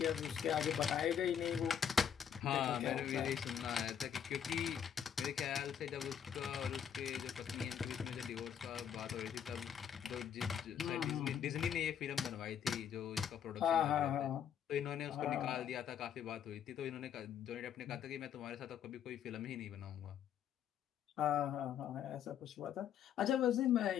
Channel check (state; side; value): quieter; right; 8.7 dB